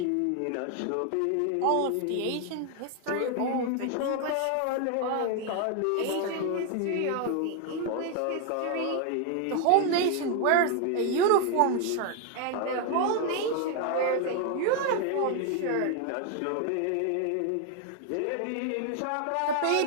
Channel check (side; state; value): both; different; correlation 0.01